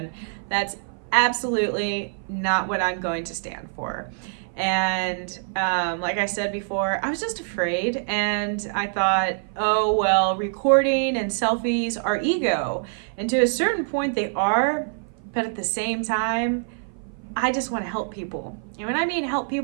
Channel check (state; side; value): silent; left; 55 dB below the other